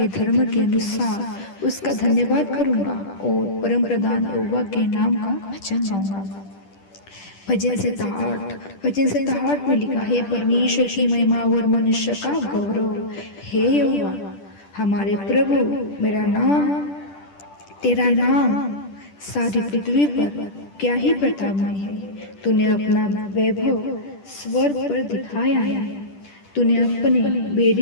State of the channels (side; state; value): right; late; 10 ms